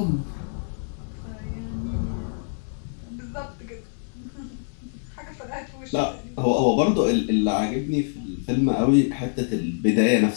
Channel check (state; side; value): silent; right; 62 dB below the other